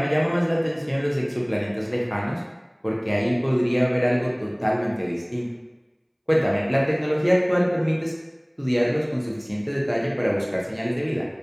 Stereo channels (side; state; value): both; identical; correlation 1.00